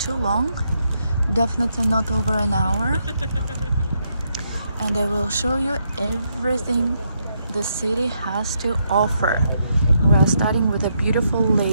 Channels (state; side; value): inverted; both; correlation -0.78